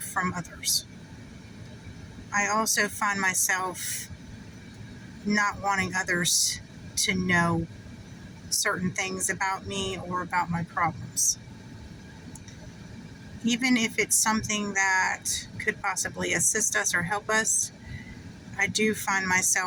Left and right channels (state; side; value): identical; both; correlation 1.00